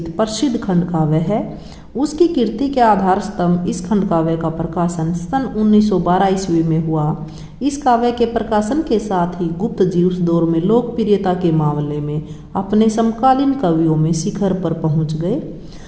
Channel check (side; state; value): both; identical; correlation 1.00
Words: प्रसिद्ध खंड काव्य है। उसकी कीर्ति के आधार स्तंभ इस खंड काव्य का प्रकाशन सन 1912 ईस्वी में हुआ। इस काव्य के प्रकाशन के साथ ही गुप्त जी उस दौर में लोकप्रियता के मामले में अपने समकालीन कवियों में शिखर पर पहुंच गए।